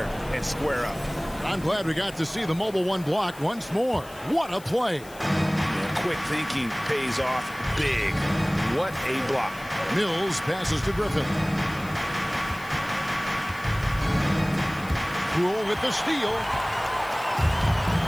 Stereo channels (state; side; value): noise; left; hiss, 20 dB below the sound